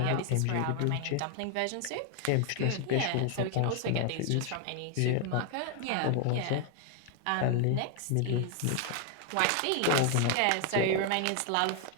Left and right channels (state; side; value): different; both; correlation 0.00